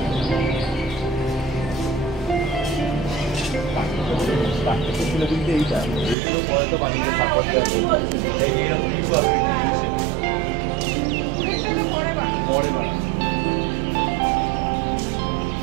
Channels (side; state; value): left; drops out; at 6.2 s